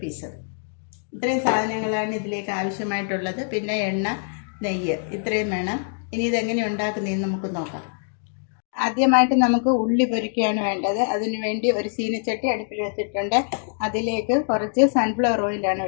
പീസ്. ഇത്രയും സാധനങ്ങളാണ് ഇതിലേക്ക് ആവശ്യമായിട്ടുള്ളത്. പിന്നെ എണ്ണ, നെയ്യ്, ഇത്രയും വേണം. ഇനി ഇതെങ്ങനെ ഉണ്ടാക്കുന്നതെന്ന് നമുക്ക് നോക്കാം. ആദ്യമായിട്ട് നമുക്ക് ഉള്ളി പൊരിക്കുകയാണ് വേണ്ടത്. അതിനു വേണ്ടി ഒരു ചീനച്ചട്ടി അടുപ്പിൽ വെച്ചിട്ടുണ്ട്. അതിലേക്ക് കുറച്ച് സൺഫ്ലവർ ഓയിലാണ്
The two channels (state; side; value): silent; right; digital silence